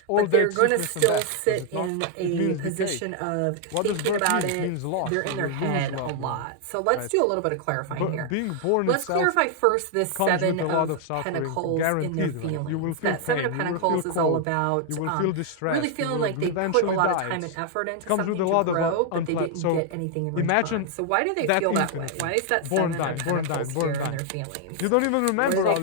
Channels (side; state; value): both; different; correlation 0.00